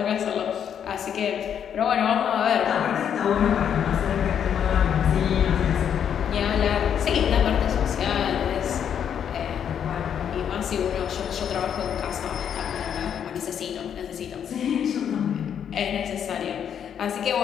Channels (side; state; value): right; quieter; 8.6 dB